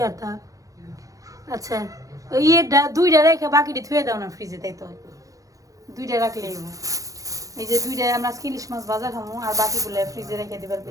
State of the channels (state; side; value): late; left; 0.17 ms